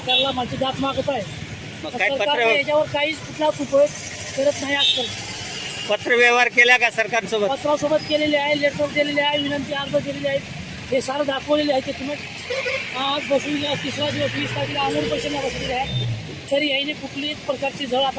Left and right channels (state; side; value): identical; both; correlation 1.00